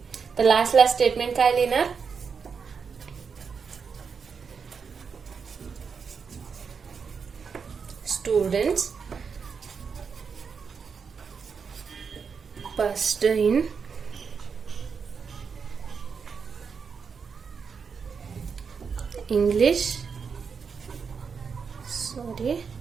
तर लास्ट स्टेटमेंट काय लिहिणार? Students passed in English,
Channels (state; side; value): quieter; left; 5.9 dB